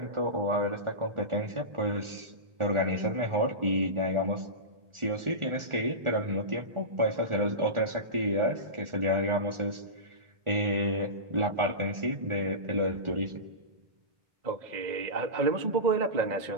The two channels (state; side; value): late; left; 1.4 ms